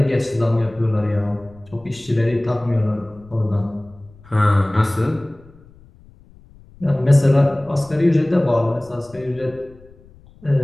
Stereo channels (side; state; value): left; noise; rumble, 25 dB below the sound